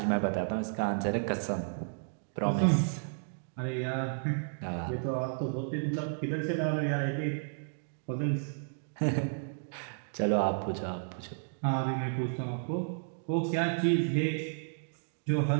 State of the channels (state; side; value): silent; left; digital silence